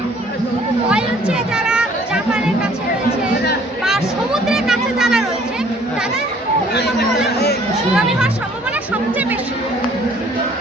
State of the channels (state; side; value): normal; both; correlation 0.57